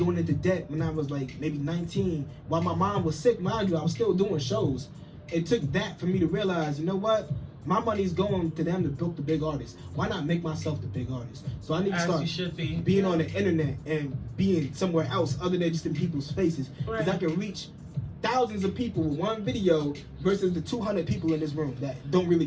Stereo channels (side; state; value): both; identical; correlation 1.00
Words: into debt when I was like maybe 19. While my mom was sick, mind you, I was still doing shows. It took that for me to realize, you know what? My money's going to them to build the big artists. Why not make myself the big artist? So I need to start being on the internet and being somewhere else other than just in people's faces. Because I can reach thousands of people with one video versus the 200 people in this room that don't really